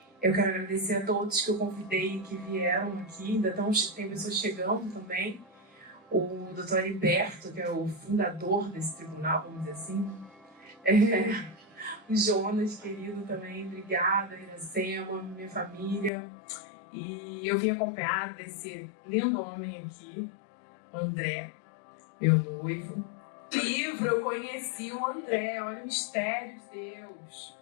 Eu quero agradecer a todos que eu convidei que vieram aqui, ainda tem pessoas chegando também. O doutor Heriberto, que é o fundador desse tribunal, vamos dizer assim. O Jonas, querido, também, obrigada, Iracema, minha família. E eu vim acompanhada desse lindo homem aqui, o André, meu noivo. Livro, eu conheci o André, olha o mistério de Deus.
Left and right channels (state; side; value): drops out; right; at 16.1 s